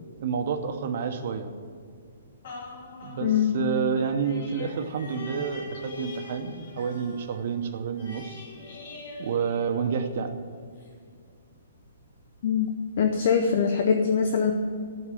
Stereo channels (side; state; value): both; inverted; correlation -0.50